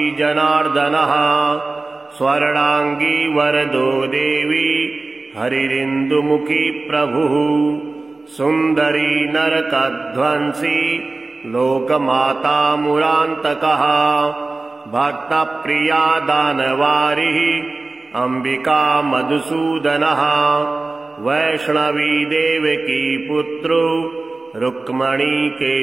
जनार्दनः स्वर्णांगी वरदो देवी हरिरिन्दुमुखी प्रभुः सुन्दरी नरकध्वंसी लोकमाता मुरान्तकः भक्तप्रिया दानवारिः अंबिका मधुसूदनः वैष्णवी देवकी पुत्रो रुक्मणी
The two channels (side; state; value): left; quieter; 3.4 dB